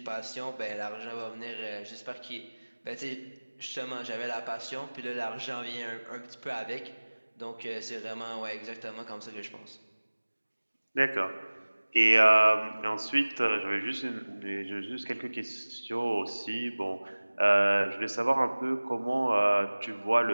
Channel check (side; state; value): both; inverted; correlation -1.00